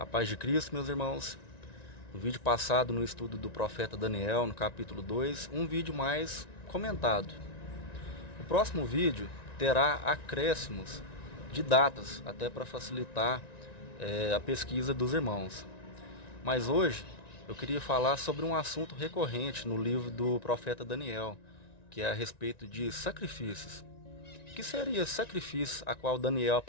paz de Cristo, meus irmãos. No vídeo passado, no estudo do profeta Daniel, no capítulo 2, um vídeo mais comentado. O próximo vídeo terá acréscimos de datas, até para facilitar a pesquisa dos irmãos. Mas hoje eu queria falar sobre um assunto recorrente no livro do profeta Daniel, que é a respeito de sacrifícios. O que seria sacrifício a qual Daniel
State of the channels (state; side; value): late; right; 1.9 ms